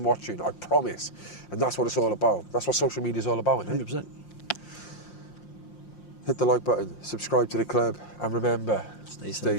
watching. I promise. And that's what it's all about. That's what social media is all about, isn't it? 100%. Hit the like button, subscribe to the club, and remember, stay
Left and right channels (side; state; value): right; late; 5.7 ms